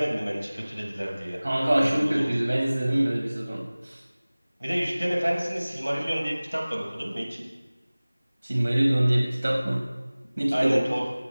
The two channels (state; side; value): inverted; both; correlation -0.99